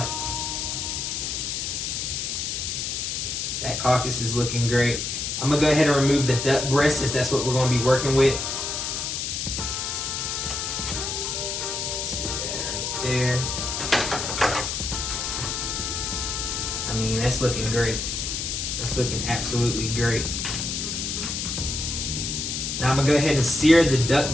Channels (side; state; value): left; noise; hiss, 2 dB below the sound